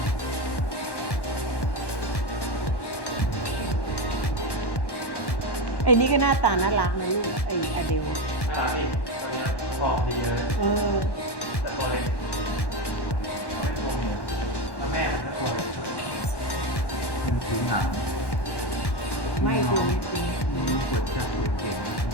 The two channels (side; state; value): right; late; 1.1 ms